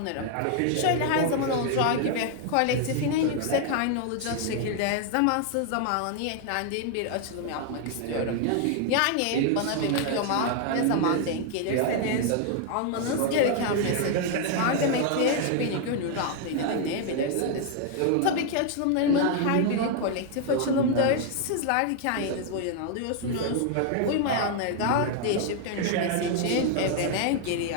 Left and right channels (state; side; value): different; both; correlation 0.00